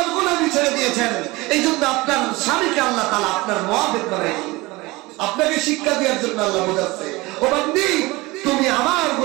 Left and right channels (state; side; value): quieter; left; 22.0 dB